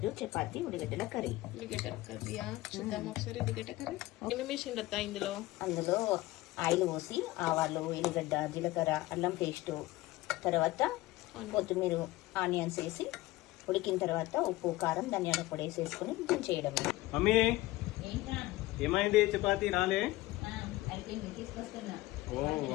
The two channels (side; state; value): right; quieter; 18.6 dB